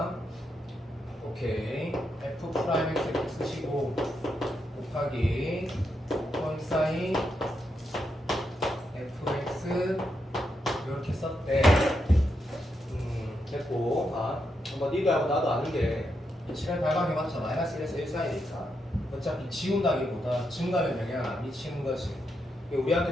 오케이. f 프라임 x 이렇게 쓰시고 곱하기 콘사인 fx 이렇게 썼대. 됐고, 뭐 니도 알고 나도 아는 게 실행 발광해봤자 마이너스 1에서 1 사이니까 어차피 지운다기보다 증가면 영향 안 미치는 거지.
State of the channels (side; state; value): both; normal; correlation 0.83